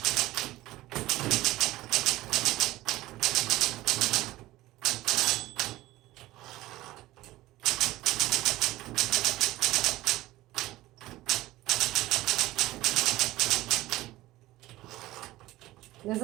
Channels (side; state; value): left; quieter; 17.2 dB